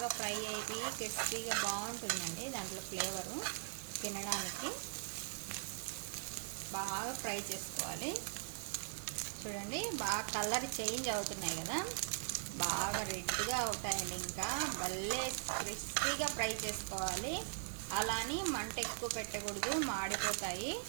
ఫ్రై అయ్యి క్రిస్పీగా బాగుంటుందండి. దాంట్లో ఫ్లేవరు తినడానికి బాగా ఫ్రై చేసుకోవాలి. చూడండి, బాగా కలర్ చేంజ్ అవుతున్నాయి కదా, బాగా రెడ్గా అవుతాయండి. ఇంకా భలే క్రిస్పీగా ఫ్రై చేసుకోవాలి. అలాని మంట ఎక్కువ పెట్టకూడదు, మాడిపోతాయి.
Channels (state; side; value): silent; left; digital silence